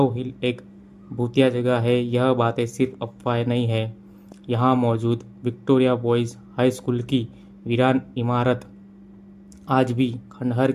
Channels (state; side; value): identical; both; correlation 1.00